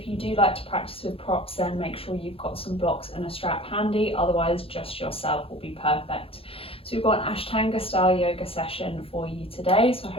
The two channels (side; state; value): right; late; 0.27 ms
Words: you do like to practice with props, then make sure you've got some blocks and a strap handy, otherwise just yourself will be perfect. So we've got an Ashtanga style yoga session for you today, so I